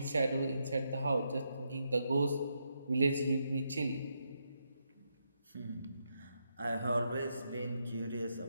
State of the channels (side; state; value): both; inverted; correlation -0.81